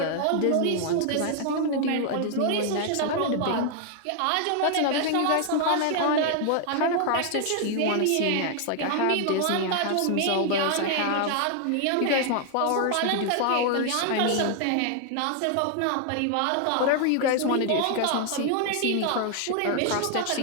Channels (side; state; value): both; different; correlation 0.00